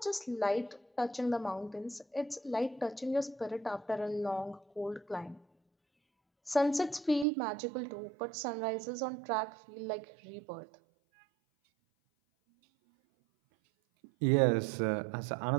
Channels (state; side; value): drops out; left; at 7.2 s